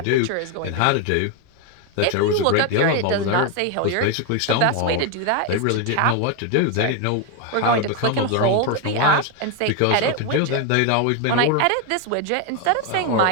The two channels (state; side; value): different; both; correlation 0.01